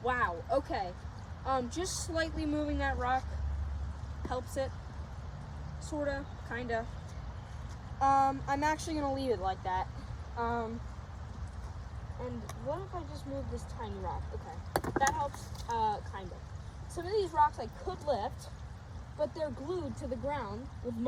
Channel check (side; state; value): both; identical; correlation 1.00